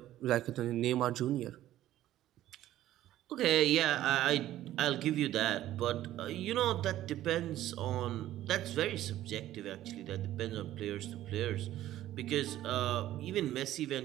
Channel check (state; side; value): quieter; left; 13.6 dB